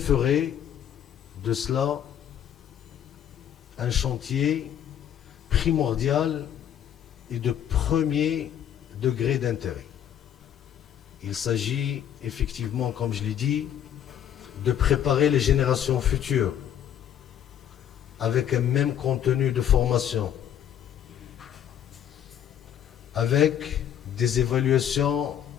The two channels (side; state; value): right; quieter; 10.0 dB